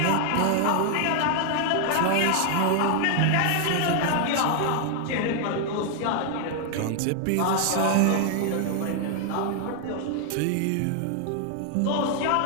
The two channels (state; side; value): different; both; correlation 0.00